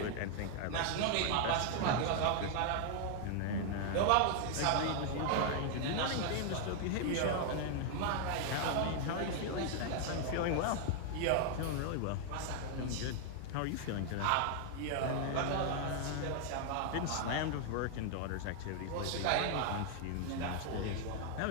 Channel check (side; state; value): both; different; correlation 0.00